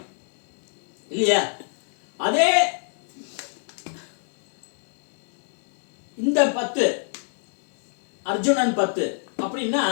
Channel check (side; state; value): right; silent; 56 dB below the other